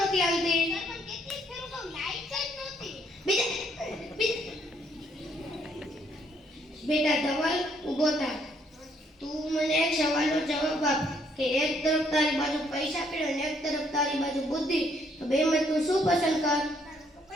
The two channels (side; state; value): both; normal; correlation 0.69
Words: આવતી? સર પણ કેટલી ફેરું કહું લાઈટ જ નહોતી. બેટા ધવલ ઊભો થા. તું મને એક સવાલનો જવાબ આપ કે એક તરફ તારી બાજુ પૈસા પડ્યો અને એક તરફ તારી બાજુ બુદ્ધિ, તો બેમાં તું શું પસંદ કર?